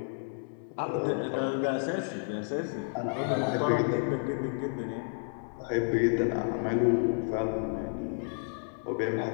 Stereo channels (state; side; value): silent; right; digital silence